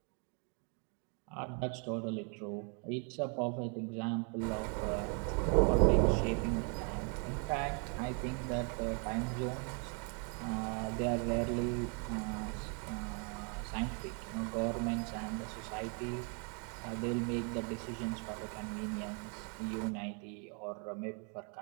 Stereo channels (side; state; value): left; quieter; 38.5 dB